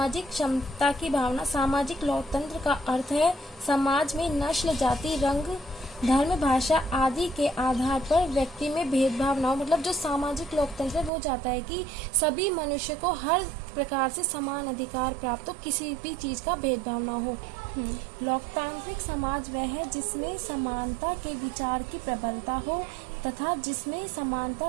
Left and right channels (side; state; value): left; drops out; at 11.1 s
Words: क्षमता की भावना। सामाजिक लोकतंत्र का अर्थ है समाज में नस्ल, जाति, रंग, धर्म, भाषा आदि के आधार पर व्यक्ति में भेदभाव न हो। मतलब जो सामाजिक लोकतंत्र है वो चाहता है कि सभी मनुष्य को हर प्रकार से समान अधिकार प्राप्त हो, किसी भी चीज का भेदभाव न हो। लोकतांत्रिक समाज वह है जिसमें समानता के विचार की प्रबलता हो तथा जिसमें